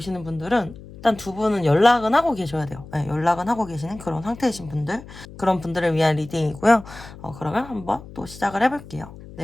분들은 일단 두 분은 연락은 하고 계셔야 돼요. 네, 연락은 하고 계시는 그런 상태이신 분들, 그런 분들을 위한 리딩이고요. 그러면 한번 또 시작을 해볼게요.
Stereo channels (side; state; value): left; noise; hum, 17 dB below the sound